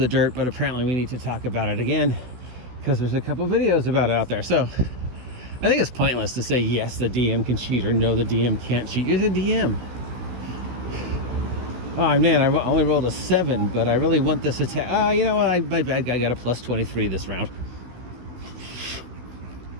dirt, but apparently we need to talk about it again because there's a couple videos about it out there. So I think it's pointless to say yes, the DM can cheat, or no, the DM can't cheat. You're the DM. Oh man, I only rolled a 7, but I really want this attack. Oh, you know what? My bad guy got a plus 23 this round.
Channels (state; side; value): late; left; 16 ms